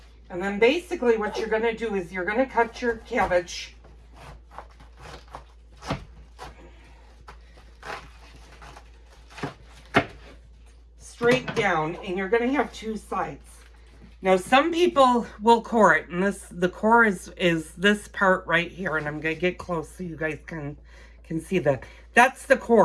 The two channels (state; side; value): identical; both; correlation 1.00